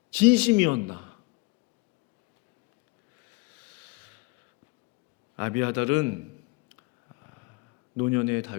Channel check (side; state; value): right; quieter; 25.7 dB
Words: 진심이었나? 아비아달은 노년의